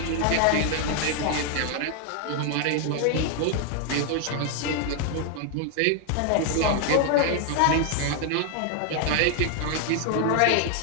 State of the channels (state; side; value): different; both; correlation 0.00